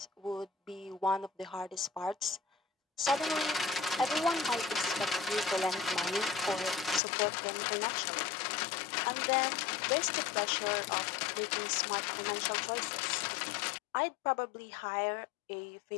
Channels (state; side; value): drops out; right; at 7.0 s